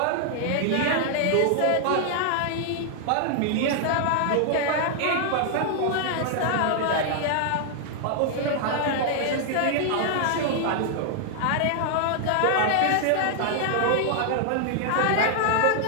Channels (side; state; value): both; different; correlation 0.00